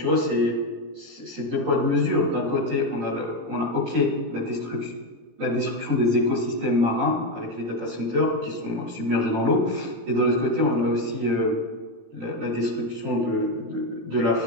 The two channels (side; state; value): left; late; 18 ms